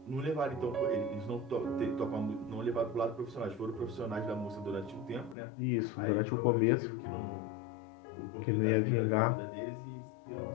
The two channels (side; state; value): right; drops out; at 5.4 s